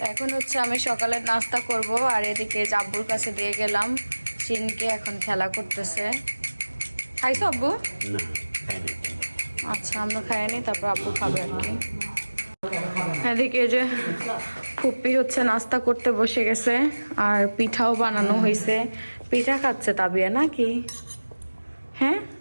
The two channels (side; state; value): both; inverted; correlation -1.00